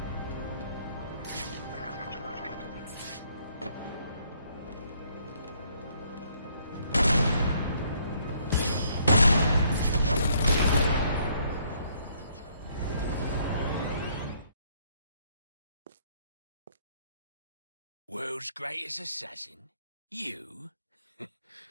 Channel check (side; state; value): both; inverted; correlation -0.67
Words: World's greatest assassin? You?